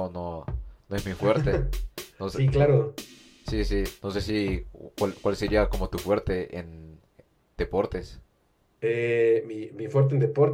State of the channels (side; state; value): both; identical; correlation 1.00